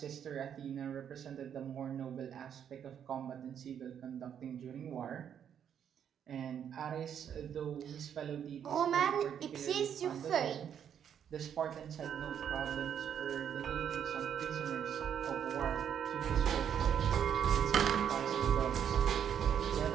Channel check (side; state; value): left; quieter; 8.7 dB